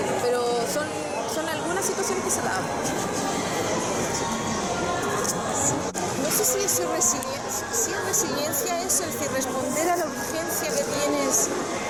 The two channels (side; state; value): both; identical; correlation 1.00